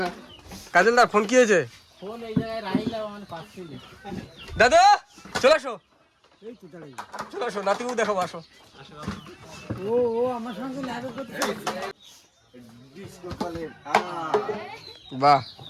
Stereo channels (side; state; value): both; identical; correlation 1.00